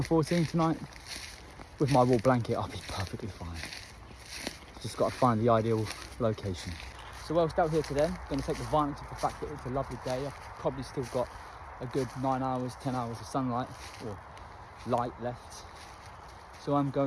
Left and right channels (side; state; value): both; identical; correlation 1.00